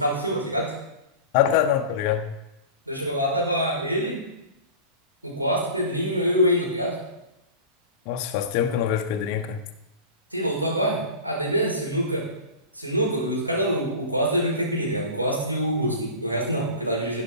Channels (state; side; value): inverted; both; correlation -0.34